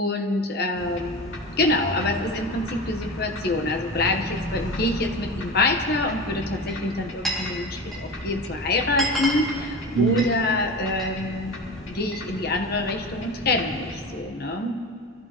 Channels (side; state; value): both; normal; correlation 0.29